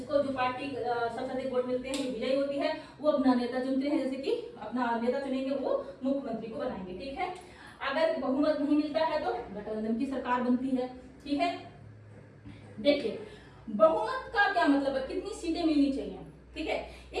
जो पार्टी सबसे अधिक वोट मिलते हैं, विजयी होती है, वो अपना नेता चुनते हैं, जैसे कि अपना नेता चुनेंगे, वो मुख्यमंत्री को बनाएंगे। ठीक है, अगर बहुमत नहीं मिलता है तो गठबंधन की सरकार बनती है। ठीक है, देखिए बहुमत का क्या मतलब है, कितनी सीटें मिलनी चाहिए। ठीक है,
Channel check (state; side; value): identical; both; correlation 1.00